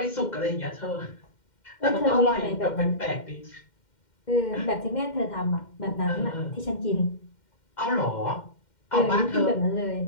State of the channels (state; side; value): late; right; 2.1 ms